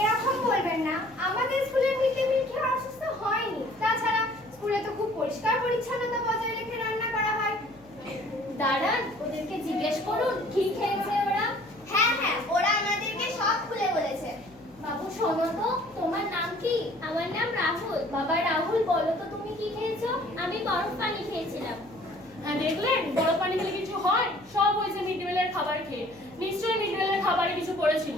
এরকম বলবেন না, আমাদের স্কুলে মিড ডে মিল খেয়ে অসুস্থ হয়নি। তাছাড়া স্কুলে তো খুব পরিষ্কার পরিচ্ছন্নতা বজায় রেখে রান্না করা হয়। দাঁড়ান, ওদেরকে জিজ্ঞেস করুন কি খেয়েছে ওরা। হ্যাঁ হ্যাঁ, ওরা আমাদেরকে সব খুলে বলেছে। বাবু শোনো তো, তোমার নাম কি? আমার নাম রাহুল। বাবা রাহুল, বলো তো তুমি কি খেয়েছো? আমি বরফ পানি খেয়েছিলাম। হ্যাঁ দেখলেন, বড় পানি খেলে কিছু হয়? সব হয়েছে মিড ডে মিলের খাবার খেয়ে। নিশ্চয়ই মিড ডে মিলের খাবারে কিছু পড়েছিল।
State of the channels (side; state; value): left; noise; hum, 27 dB below the sound